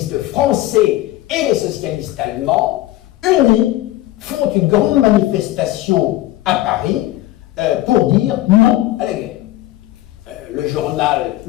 français et les socialistes allemands, unis, font une grande manifestation à Paris pour dire non à la guerre. Le journal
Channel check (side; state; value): right; quieter; 15.9 dB